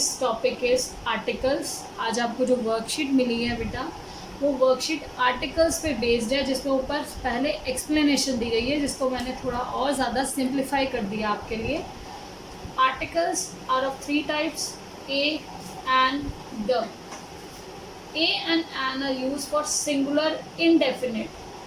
topic is articles. आज आपको जो वर्कशीट मिली है बेटा, वो वर्कशीट आर्टिकल्स पे बेस्ड है, जिसके ऊपर पहले एक्सप्लेनेशन दी गई है, जिसको मैंने थोड़ा और ज़्यादा सिंप्लीफाई कर दिया आपके लिए। Articles are of three types, a and the. A and an are use for singular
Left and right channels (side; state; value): both; identical; correlation 1.00